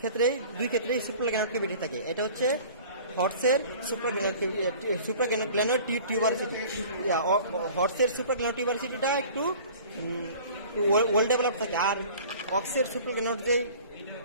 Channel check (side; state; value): both; inverted; correlation -0.45